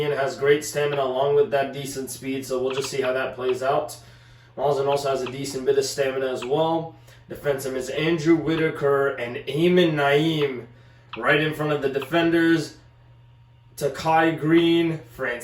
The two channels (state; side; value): identical; both; correlation 1.00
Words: has great stamina along with that decent speed, so we'll just see how that plays out. Mazen also has a decent bit of stamina as well. Defensive is Andrew Whitaker and Eamon Naeem right in front of the defenders. Takai Green,